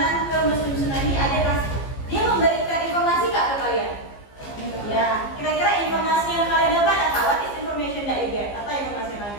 ke museum tsunami, dia memberikan informasi nggak ke kalian? Ya, kira-kira informasi yang kalian dapat apa? What is information that you get? Apa informasi yang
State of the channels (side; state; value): right; late; 15 ms